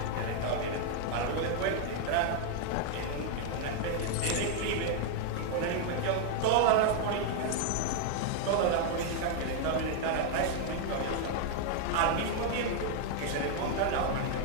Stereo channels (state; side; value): different; both; correlation 0.00